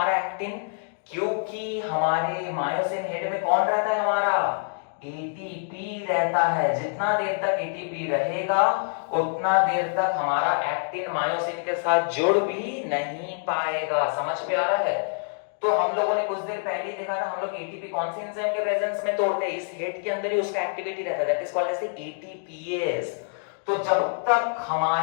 एक्टिन? क्योंकि हमारे मायोसिन हेड में कौन रहता है हमारा? एटीपी रहता है। जितना देर तक एटीपी रहेगा उतना देर तक हमारा एक्टिन मायोसिन के साथ जुड़ भी नहीं पाएगा। समझ में आ रहा है? तो हम लोगों ने कुछ देर पहले ही देखा था, हम लोग एटीपी कौन से एंजाइम के प्रेजेंस में तोड़ते हैं? इस हेड के अंदर ही उसका एक्टिविटी रहता है, that is called as ATPase. तो जब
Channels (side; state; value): right; silent; digital silence